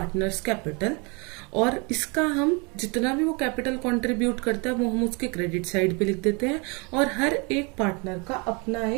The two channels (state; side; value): quieter; left; 30.8 dB